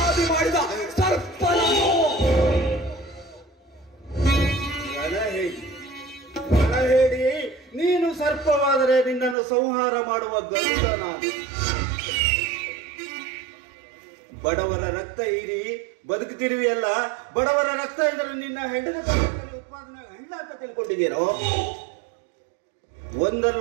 ಮಾಡಿದ ಸರ್ಪ ನಾನು. ರಣ ಹೇಳಿ ನೀನು ಸರ್ಪವಾದರೆ ನಿನ್ನನ್ನು ಸಂಹಾರ ಮಾಡುವ ಗರುಡ ನಾನು. ಬಡವರ ರಕ್ತ ಹೀರಿ ಬದುಕುತ್ತಿರುವಿಯಲ್ಲ, ಬಡವರ ರಕ್ತ ಎಂದರೆ ನಿನ್ನ ಹೆಂಡದ ಉತ್ಪಾದನೆ ಹೆಣ್ಣ ಅಂತ ತಿಳ್ಕೊಂಡಿದ್ದೀರೋ?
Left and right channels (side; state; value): left; drops out; at 9.3 s